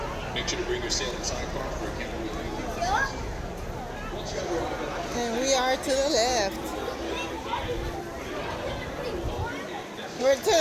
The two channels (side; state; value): both; identical; correlation 1.00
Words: make sure to bring your sailing sidecar for a camera with And we are to the left. We're to